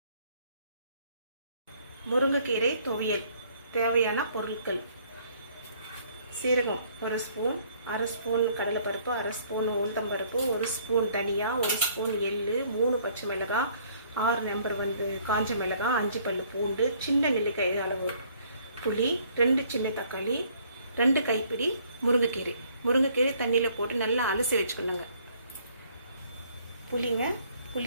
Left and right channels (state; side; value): inverted; both; correlation -0.62